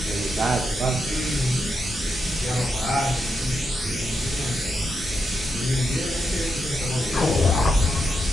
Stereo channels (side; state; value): both; normal; correlation 0.84